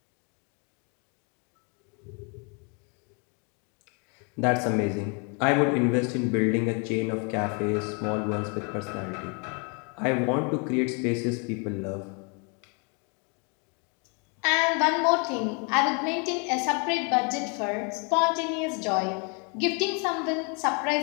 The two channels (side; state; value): right; quieter; 35.3 dB